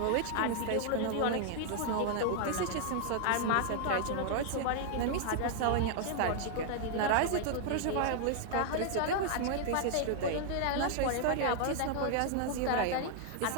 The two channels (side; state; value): both; different; correlation 0.00